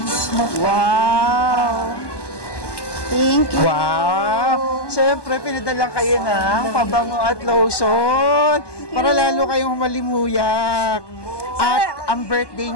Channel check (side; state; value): right; late; 1.2 ms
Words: Wow! Thank you. Wow! Syempre, pinadalang kayo ng pabango at lotion para lalo kayong malimuyak. At ang birthday